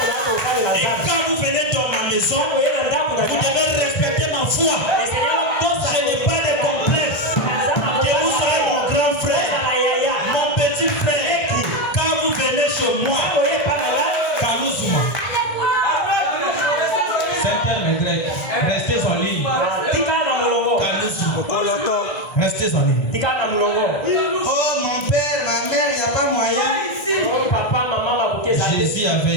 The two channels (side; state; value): right; late; 1.3 ms